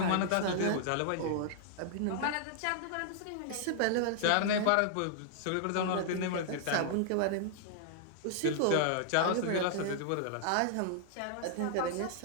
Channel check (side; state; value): both; different; correlation -0.01